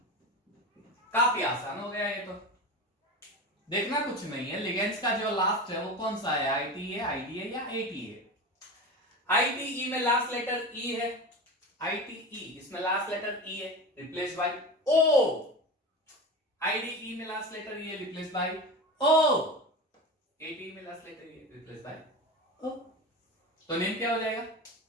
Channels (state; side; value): normal; both; correlation 0.27